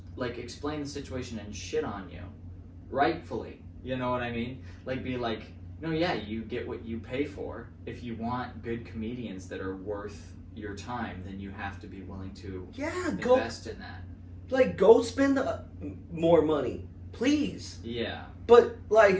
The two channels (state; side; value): identical; both; correlation 1.00